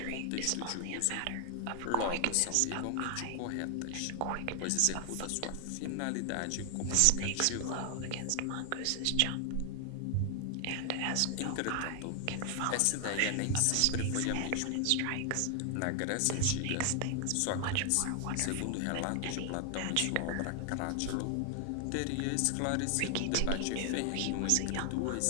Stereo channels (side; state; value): both; different; correlation 0.00